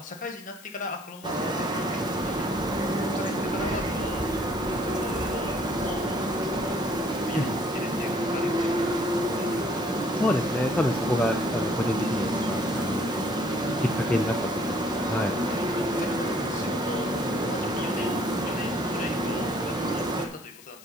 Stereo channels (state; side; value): noise; left; hiss, 20 dB below the sound